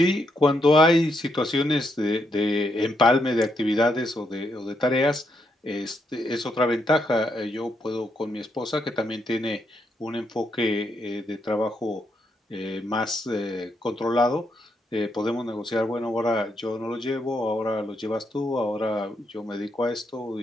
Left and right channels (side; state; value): both; normal; correlation 0.78